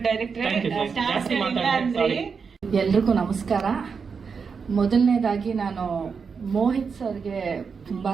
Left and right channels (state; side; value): quieter; left; 5.6 dB